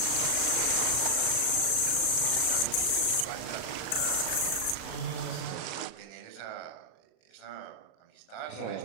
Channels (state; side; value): late; right; 37 ms